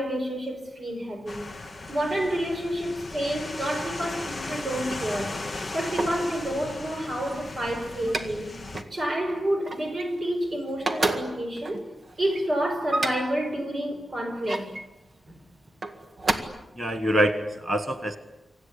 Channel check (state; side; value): normal; both; correlation 0.89